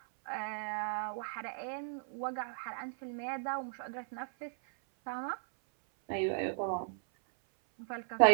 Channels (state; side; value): silent; left; 53 dB below the other